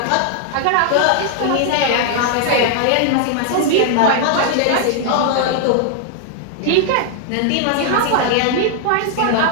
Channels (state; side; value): different; both; correlation 0.00